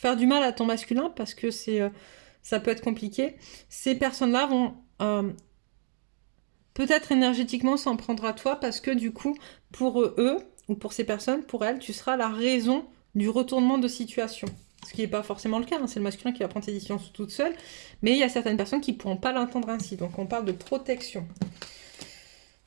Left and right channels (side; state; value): left; silent; digital silence